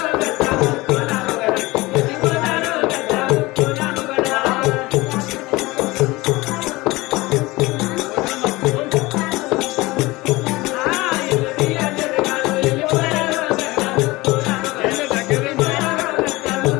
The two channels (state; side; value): quieter; right; 21.2 dB